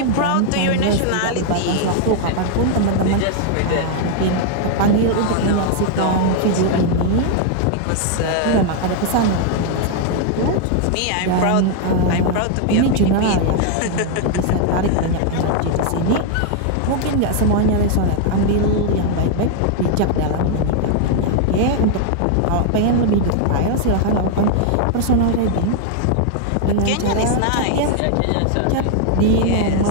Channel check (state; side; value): different; both; correlation 0.00